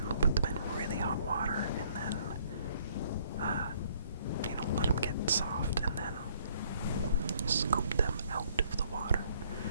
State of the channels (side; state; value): both; inverted; correlation -0.63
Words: put them in really hot water and then, let them get soft and then scoop them out of the water